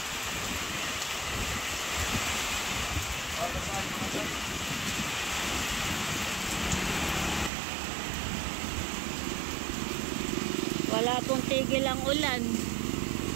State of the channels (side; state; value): left; drops out; at 7.5 s